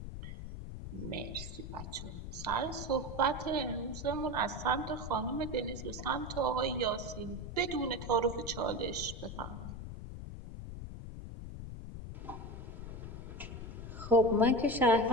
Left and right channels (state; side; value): noise; left; rumble, 9 dB below the sound